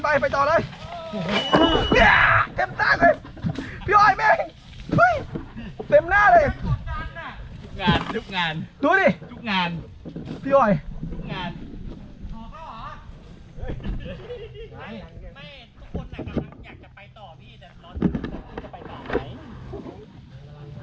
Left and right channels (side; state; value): both; identical; correlation 1.00